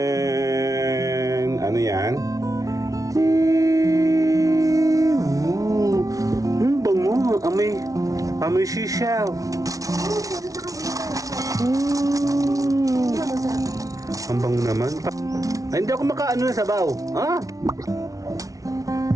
Ano yan? Bango! Amoy shisha. Ang bango naman. Ay, hindi ako makaano na sabaw. Ah!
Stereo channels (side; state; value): left; late; 0.17 ms